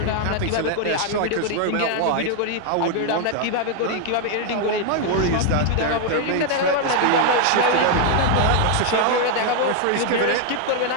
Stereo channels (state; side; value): different; both; correlation 0.00